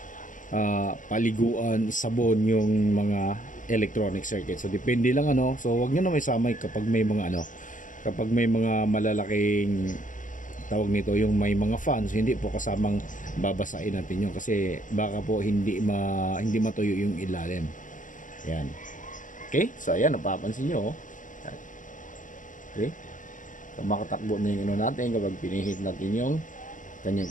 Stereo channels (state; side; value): late; right; 0.38 ms